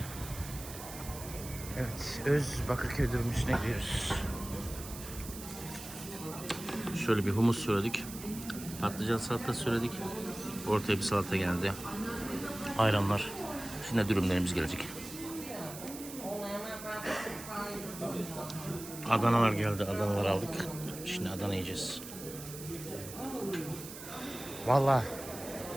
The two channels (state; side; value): noise; right; hiss, 12 dB below the sound